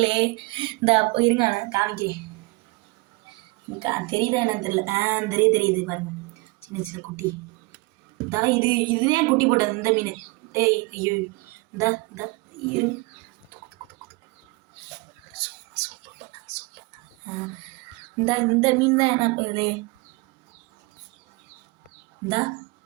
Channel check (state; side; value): quieter; left; 25.4 dB